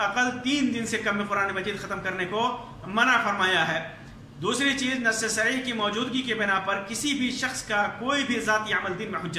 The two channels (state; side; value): identical; both; correlation 1.00